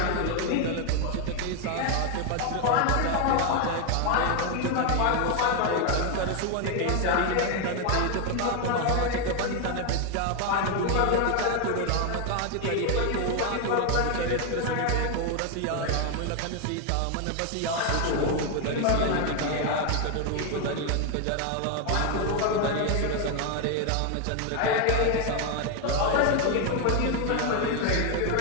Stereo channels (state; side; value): different; both; correlation 0.01